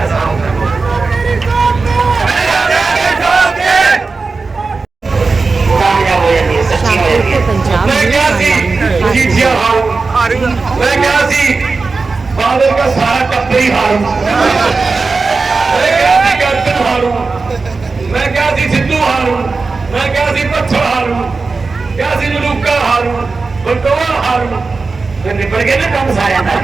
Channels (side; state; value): left; quieter; 4.1 dB